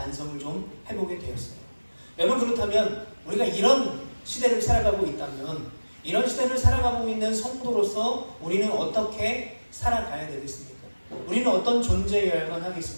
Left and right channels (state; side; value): inverted; both; correlation -1.00